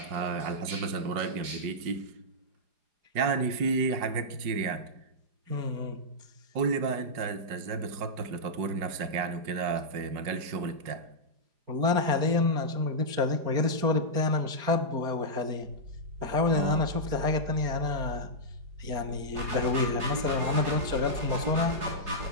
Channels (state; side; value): late; left; 4.8 ms